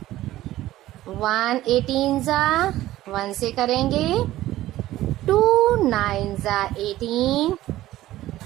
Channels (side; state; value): left; quieter; 15.2 dB